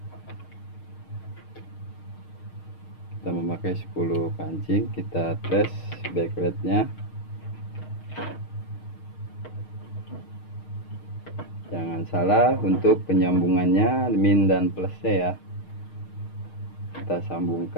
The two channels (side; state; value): right; late; 6.5 ms